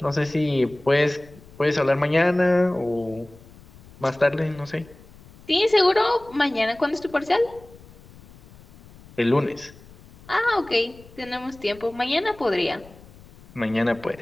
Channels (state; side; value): noise; left; rumble, 23 dB below the sound